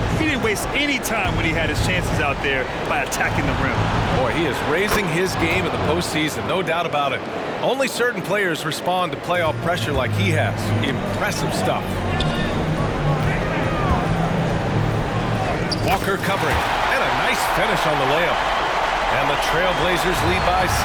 He didn't waste any time when he had his chances out there by attacking the rim. Boy, he is raising his game in the postseason, no doubt about it. Only certain players respond to playoff pressure like he has. Impressive stuff. Walker covering, and a nice finish on the layup. And the Trailblazers lead by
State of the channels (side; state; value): both; identical; correlation 1.00